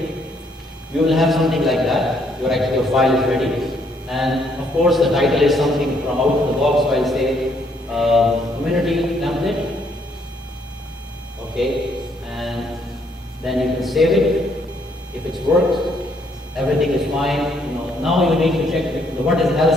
you will have something like that. Your file is ready. And of course, the title is something from out of the box, so I'll say community template. Okay, and then you can save it. If it's worked, everything is fine. Now you need to check what is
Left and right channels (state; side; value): normal; both; correlation 0.69